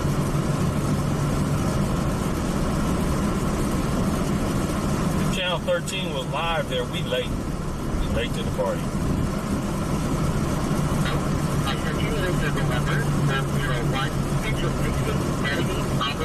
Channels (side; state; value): both; identical; correlation 1.00